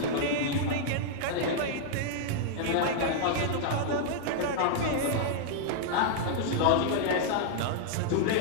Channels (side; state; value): both; different; correlation -0.01